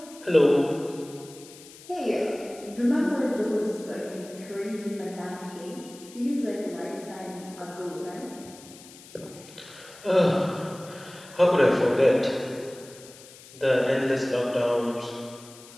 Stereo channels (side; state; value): left; noise; hiss, 20 dB below the sound